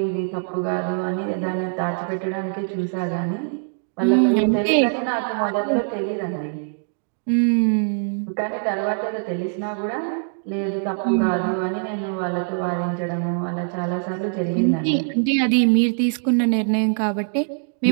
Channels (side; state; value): left; silent; digital silence